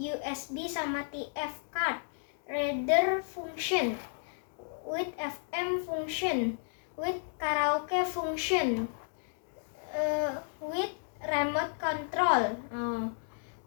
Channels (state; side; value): silent; right; digital silence